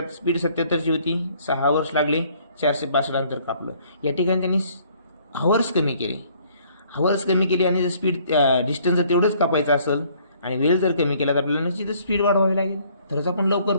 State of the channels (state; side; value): inverted; both; correlation -0.61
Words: स्पीड 77ची होती. 6 hours लागले. 462 अंतर कापलं. या ठिकाणी त्यांनी हावर्स कमी केले आणि जर स्पीड डिस्टन्स जर तेवढंच कापायचं असेल आणि वेळ जर कमी केला तर आपल्याला निश्चितच स्पीड वाढवावी लागेल. तरच आपण लवकर